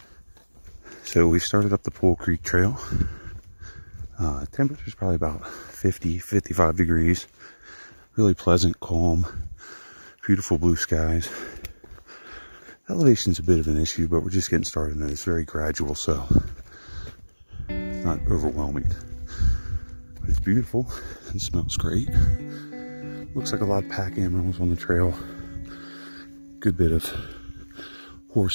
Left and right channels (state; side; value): inverted; both; correlation -1.00